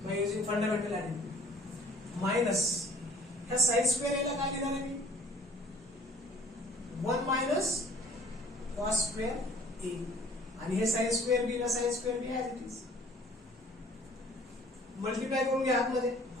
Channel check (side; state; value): both; normal; correlation 0.54